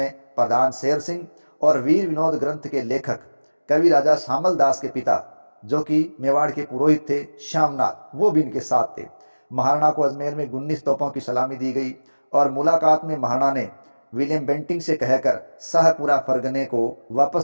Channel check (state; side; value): inverted; both; correlation -1.00